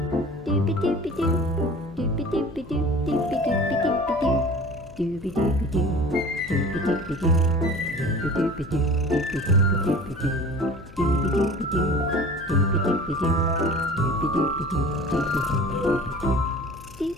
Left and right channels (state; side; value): noise; left; hum, 20 dB below the sound